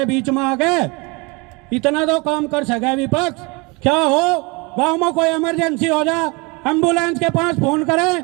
बीच में आके, इतना तो काम कर सके विपक्ष। क्या हो, गांव में कोई इमरजेंसी हो जा, एम्बुलेंस के पास फोन करें,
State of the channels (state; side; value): quieter; left; 27.7 dB